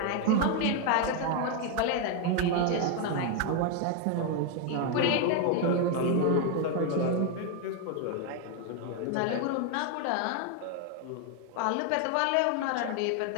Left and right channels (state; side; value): different; both; correlation 0.01